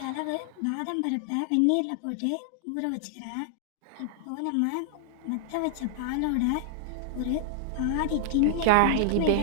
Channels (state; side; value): different; both; correlation -0.01